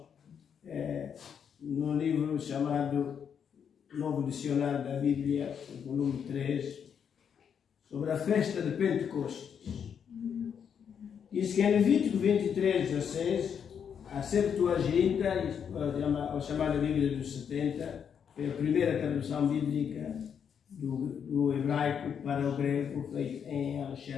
num livro chamado Novo Dicionário da Bíblia, volume 3, sobre a festa de Pentecostes. Diz que em Levítico 23:16, a Septuaginta, a chamada Bíblia dos 70, foi a primeira tradução bíblica do hebraico para o grego, feita em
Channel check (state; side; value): quieter; right; 7.6 dB